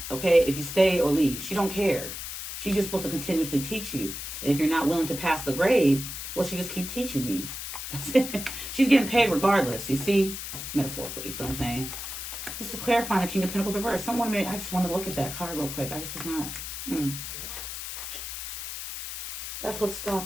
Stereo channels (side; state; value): left; noise; hiss, 7 dB below the sound